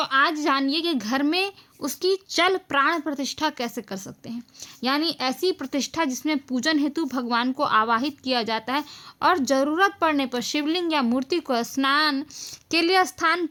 जानिए कि घर में उसकी चल प्राण प्रतिष्ठा कैसे कर सकते हैं। यानी ऐसी प्रतिष्ठा जिसमें पूजन हेतु भगवान को आवाहित किया जाता है और ज़रूरत पड़ने पर शिवलिंग या मूर्ति को स्नान के लिए स्थान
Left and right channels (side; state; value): both; identical; correlation 1.00